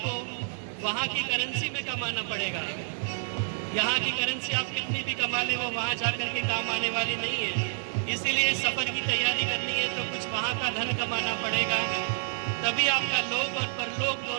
वहाँ की करेंसी में कमाना पड़ेगा। यहाँ की करेंसी आप कितनी भी कमा ले, वो वहाँ जा कर के काम आने वाली नहीं है। इसीलिए सफ़र की तैयारी करनी है तो कुछ वहाँ का धन कमाना पड़ेगा, तभी आपका लोक और परलोक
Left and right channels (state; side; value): silent; left; digital silence